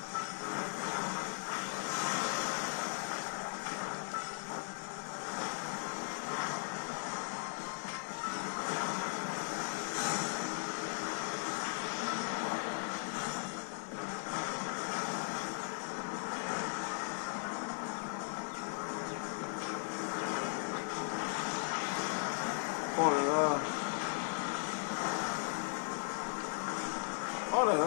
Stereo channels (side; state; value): right; silent; digital silence